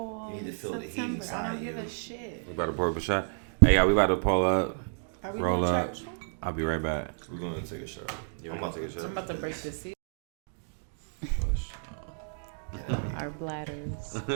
you need to feel September. The heat inside I don't you. give a shit. We about to pour up a shot. Hey, y'all, we about to pull up, roll up. I'll be right back. We're going to take a shot. I'm about to take a shot. I'm about to break the seal. Our bladders.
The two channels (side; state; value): left; silent; digital silence